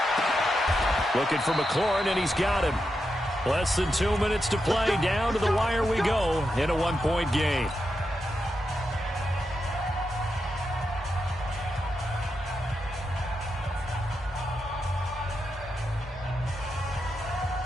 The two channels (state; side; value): normal; both; correlation 0.86